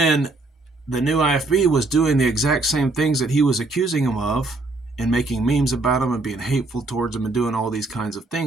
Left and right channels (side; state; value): left; quieter; 3.1 dB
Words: the new IFB was doing the exact same things that he was accusing him of, and making memes about him and being hateful towards him and doing all these kinds of